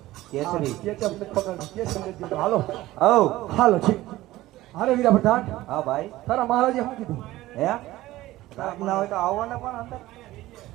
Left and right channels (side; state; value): left; quieter; 16.7 dB